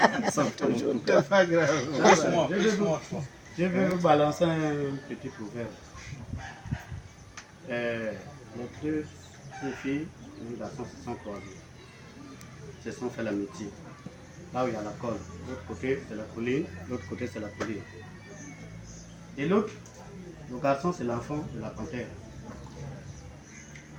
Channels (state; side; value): identical; both; correlation 1.00